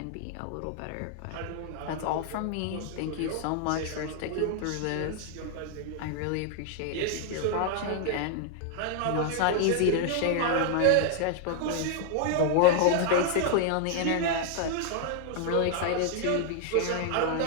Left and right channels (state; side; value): different; both; correlation -0.01